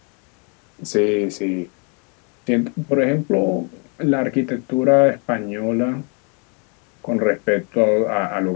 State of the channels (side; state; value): right; quieter; 36.0 dB